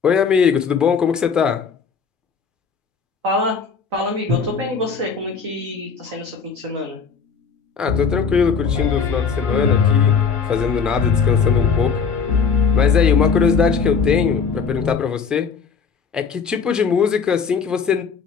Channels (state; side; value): quieter; right; 5.8 dB